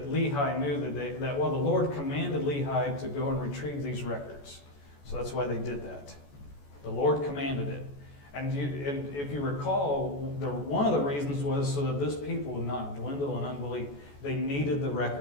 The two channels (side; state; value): right; late; 14 ms